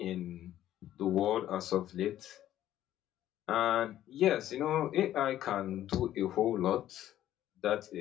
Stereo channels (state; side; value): quieter; right; 12.5 dB